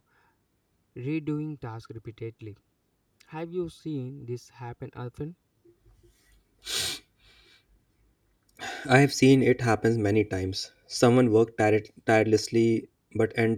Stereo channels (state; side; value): identical; both; correlation 1.00